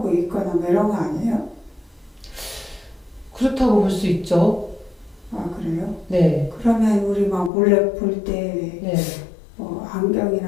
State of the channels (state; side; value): drops out; right; at 7.5 s